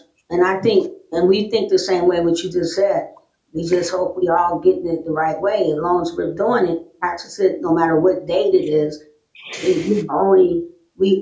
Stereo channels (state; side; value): identical; both; correlation 1.00